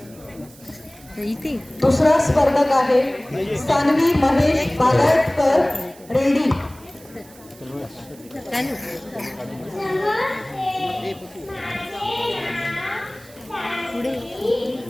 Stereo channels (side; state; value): right; noise; hiss, 23 dB below the sound